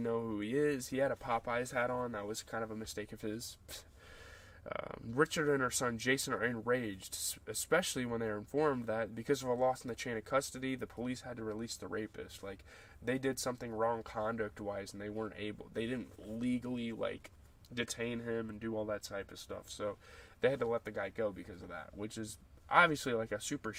who he is. He had a Popeyes hat on. That was kind of a mistake of his. Richard and her son Jason are enraged, especially when they are informed that because of a loss in the chain of custody, the police had to release the rapist. Like, they did something wrong conduct-wise, and they didn't legally, like, detain him and do all that type of stuff. So they had to let the guy go because of that, which is obviously, like, a super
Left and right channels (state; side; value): identical; both; correlation 1.00